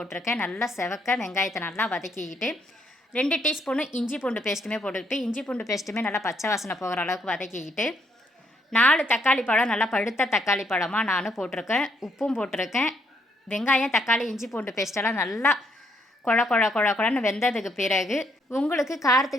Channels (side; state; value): both; normal; correlation 0.71